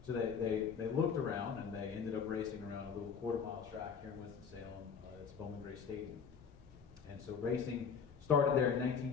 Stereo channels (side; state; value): right; quieter; 6.5 dB